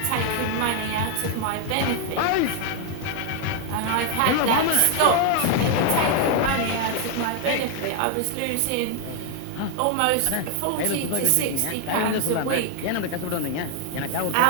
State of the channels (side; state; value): both; different; correlation 0.00